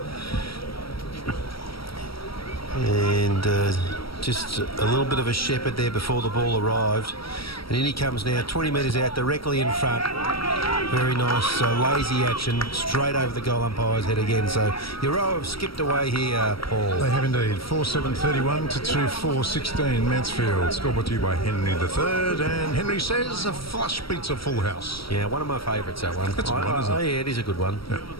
And just a little bit of a shepherd there before the ball arrived. And in he comes now, 20 metres out, directly in front. Very nice, lazy action, straight over the goal umpire's head again. So Euroa have skipped away here, Paul. They have indeed. 4-7-31 to 2-4-16 Mansfield. Scored brought to you by Henry III. And Henry says a flush beats a full house. Yeah, one of my favourites, that one. That's a good one, isn't it? Yeah, it is a good one. Yeah.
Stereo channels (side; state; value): right; late; 0.75 ms